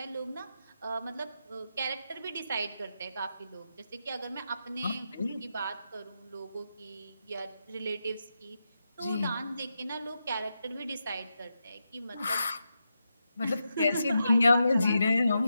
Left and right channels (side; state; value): both; inverted; correlation -0.87